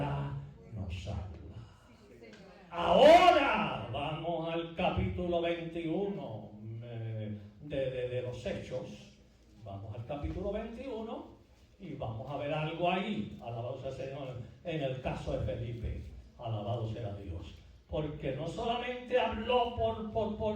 nos habla. Ahora vamos al capítulo 21 de los Hechos. Vamos al capítulo 21 y vamos a ver algo ahí. Alabado sea el Señor. En el caso de Felipe. Alabado sea Dios. Porque no solamente habló por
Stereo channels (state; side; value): identical; both; correlation 1.00